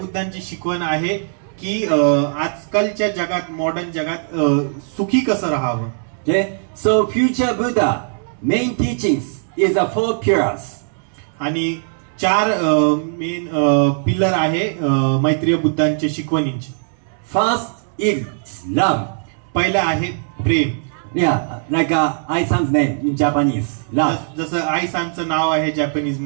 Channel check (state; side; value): silent; left; 64 dB below the other